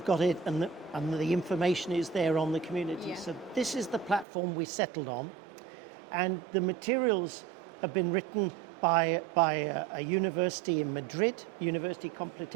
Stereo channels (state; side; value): drops out; left; at 4.2 s